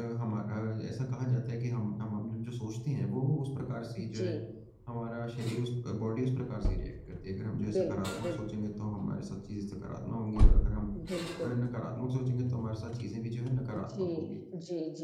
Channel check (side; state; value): both; identical; correlation 1.00